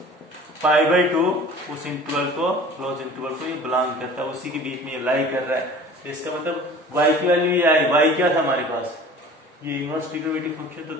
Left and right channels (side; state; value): both; normal; correlation 0.44